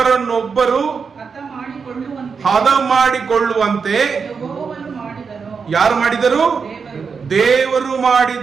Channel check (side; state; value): left; quieter; 5.6 dB